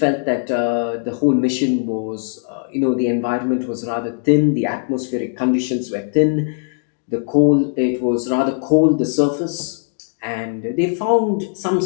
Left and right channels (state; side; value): silent; right; digital silence